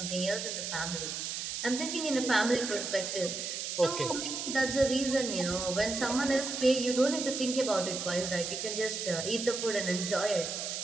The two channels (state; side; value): noise; right; hiss, 4 dB below the sound